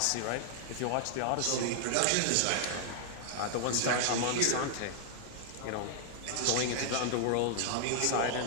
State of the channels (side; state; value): both; different; correlation -0.01